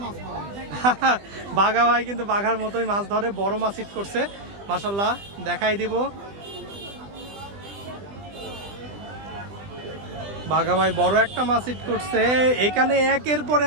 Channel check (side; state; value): left; late; 20 ms